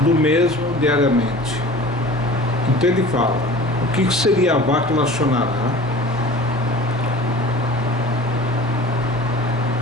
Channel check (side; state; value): both; normal; correlation 0.41